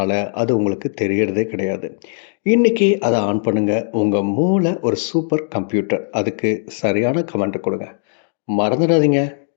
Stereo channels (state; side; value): silent; right; 63 dB below the other